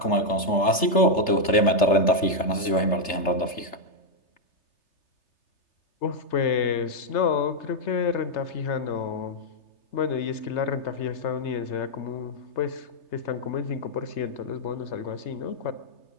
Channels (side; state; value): right; late; 3.3 ms